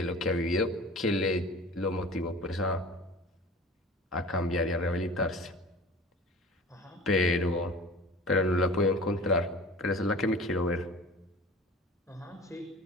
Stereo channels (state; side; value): normal; both; correlation 0.40